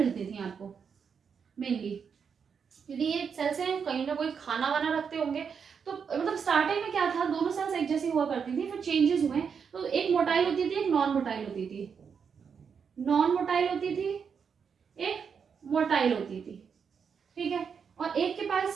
थी आपको मेनली, क्योंकि ये सेल्स हैं कहीं ना कोई खाना वाना रखते होंगे। तो मतलब स्टार्टिंग में क्या था, दोनों सेल्स एक जैसी हुआ करती थी, फिर चेंजेस हुए, तो एक मोटाइल होती थी, एक नॉन मोटाइल होती थी, नॉन मोटाइल होती थी, एक मोटाइल होती थी, ठीक है। और एक के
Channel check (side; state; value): left; quieter; 6.5 dB